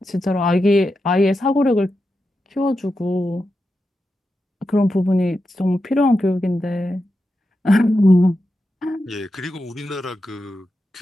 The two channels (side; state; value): both; normal; correlation 0.88